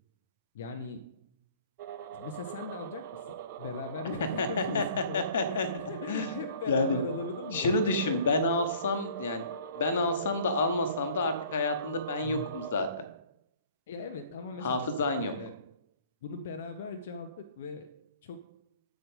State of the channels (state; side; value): inverted; both; correlation -0.52